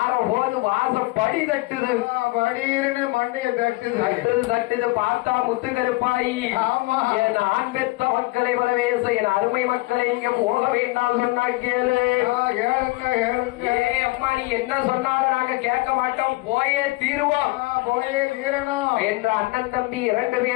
வாசப்படி தட்டுது. படின்னு மண்டைய தட்டுது. தட்டுது பார்த்தா முத்து கருப்பாயி. ஆமா. என் ஆண் பெத்த மக்களை வரவேச என் அருமை மக்களை இங்க போக வேண்டாம் சொன்னா கேளு. கேளுங்க கேளுங்க. ஏ அம்மா நீ என்ன சொன்னாலும் நாங்க கேட்க மாட்டோம், போயே தீருவோம், போயே தீரணும் என்ற அண்ணன் தம்பி 2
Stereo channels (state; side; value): quieter; right; 21.9 dB